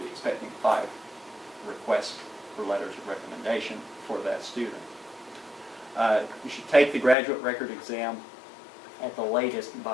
expecting 5 requests for letters of recommendation for that student. You should take the graduate record exam at the latest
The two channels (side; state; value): right; drops out; at 7.2 s